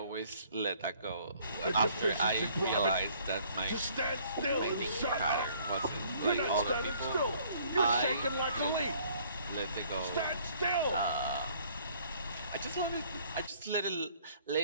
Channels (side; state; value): both; inverted; correlation -0.59